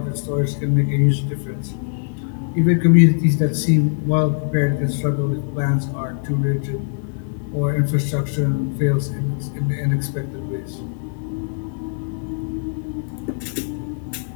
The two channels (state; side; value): silent; right; digital silence